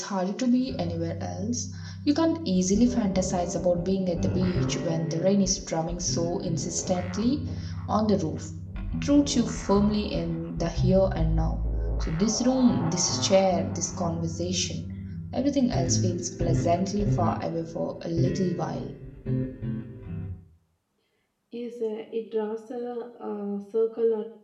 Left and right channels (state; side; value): identical; both; correlation 1.00